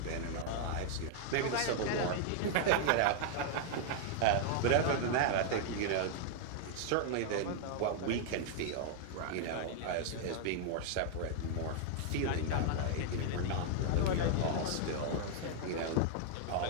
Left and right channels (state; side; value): different; both; correlation 0.00